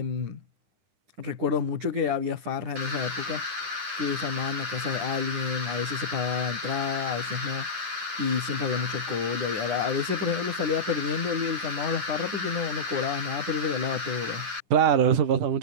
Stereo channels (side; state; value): left; late; 9.8 ms